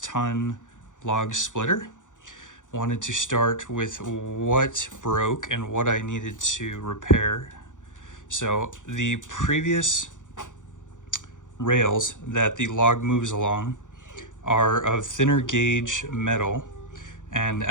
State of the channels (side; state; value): right; late; 0.86 ms